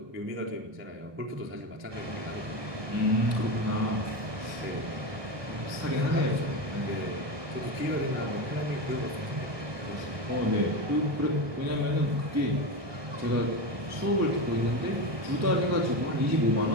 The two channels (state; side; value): late; left; 1.2 ms